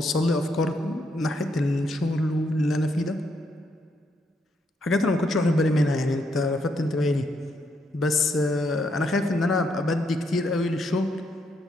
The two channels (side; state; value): both; normal; correlation 0.76